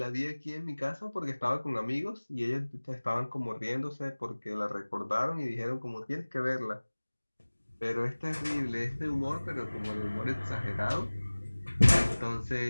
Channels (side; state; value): both; inverted; correlation -1.00